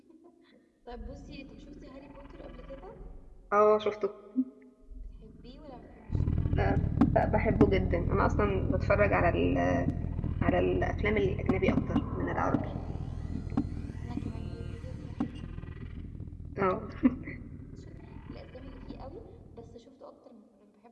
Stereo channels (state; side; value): identical; both; correlation 1.00